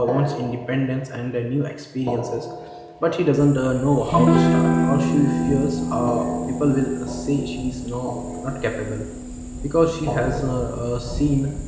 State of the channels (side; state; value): both; identical; correlation 1.00